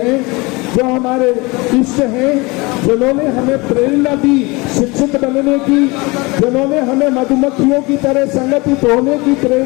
जो हमारे इष्ट हैं, जिन्होंने हमें प्रेरणा दी शिक्षित बनने की, जिन्होंने हमें मधुमक्खियों की तरह संगठित होने की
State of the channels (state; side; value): quieter; right; 25.0 dB